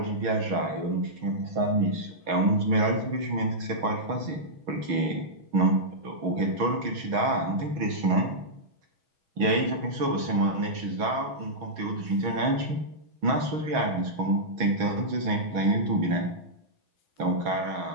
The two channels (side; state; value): left; late; 6.3 ms